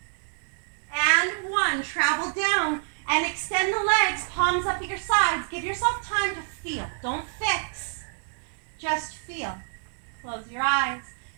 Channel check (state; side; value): silent; left; digital silence